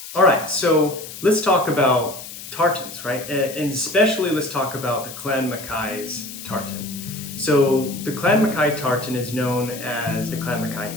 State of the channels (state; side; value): noise; left; hiss, 12 dB below the sound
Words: All right, so let's talk about tartans, right? And especially let's talk about the Clan Mackay's tartan. So the Clan Mackay tartan is known as the Clan Mackay